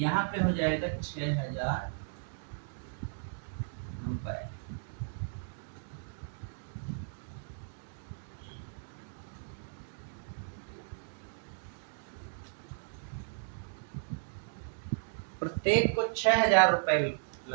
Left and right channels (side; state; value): left; silent; digital silence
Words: पे हो जाएगा 6,000 रुपये। प्रत्येक को 6,000 रुपए